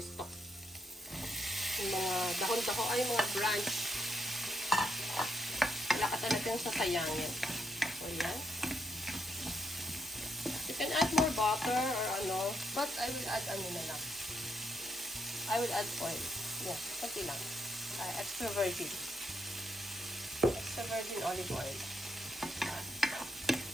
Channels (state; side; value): normal; both; correlation 0.78